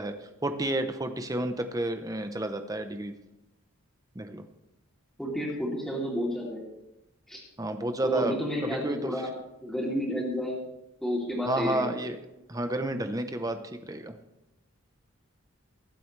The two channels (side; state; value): both; normal; correlation 0.62